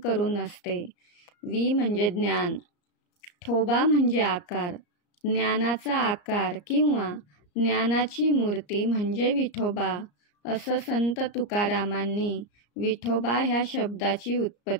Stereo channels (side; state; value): right; late; 34 ms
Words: असते. वी म्हणजे ज्ञान, ठोबा म्हणजे आकार, ज्ञानाचा आकार किंवा ज्ञानाची मूर्ती म्हणजे विठोबा, असं संत तुकारामांनी विठोबा ह्या शब्दाची